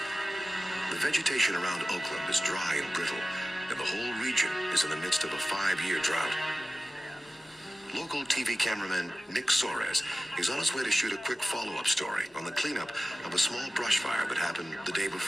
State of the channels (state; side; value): normal; both; correlation 0.95